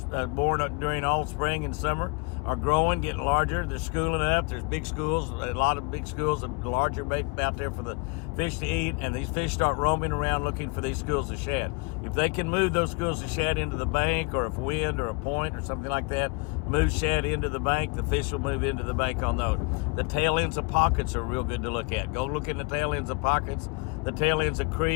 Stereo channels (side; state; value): right; quieter; 30.3 dB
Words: born during all spring and summer are growing, getting larger. They're schooling up. There's big schools, a lot of big schools of larger bait out there for the fish to eat, and these fish start roaming around looking for these schools of shad. If they can move those schools of shad into the bank, or if wind or a point or something like that moves shad into the bank, the fish will move into the bank on those. The tail ends of pockets are real good to look at. Go look in the tail ends of pockets, the tail ends of